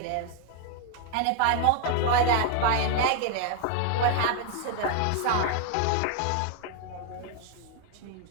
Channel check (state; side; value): different; both; correlation 0.00